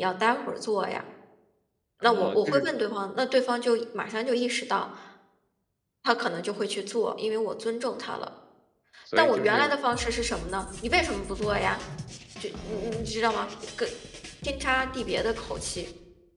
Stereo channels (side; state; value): both; identical; correlation 1.00